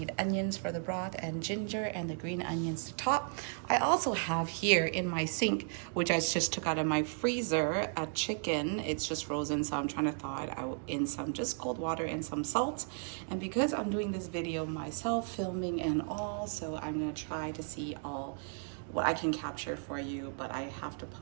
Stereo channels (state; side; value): silent; left; 55 dB below the other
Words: onions for the broth and ginger and the green onions to top. I also have here in my sink, which I just took out of my freezer, a chicken. It's just frozen, so I'm trying to thaw it out in some just cold water and some salt. And because I'm doing this video myself, filming and all, so I'm gonna try to see what I can capture for you, but I have to